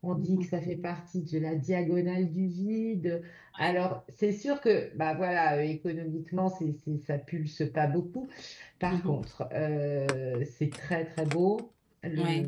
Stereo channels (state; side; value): identical; both; correlation 1.00